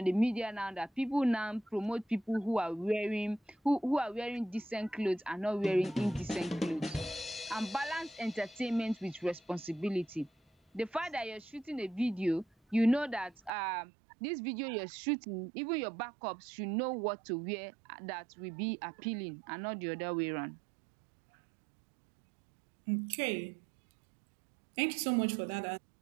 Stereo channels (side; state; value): left; drops out; at 13.5 s